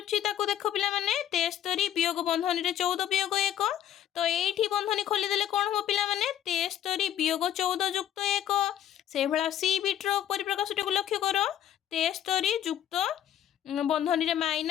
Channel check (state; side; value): quieter; right; 10.9 dB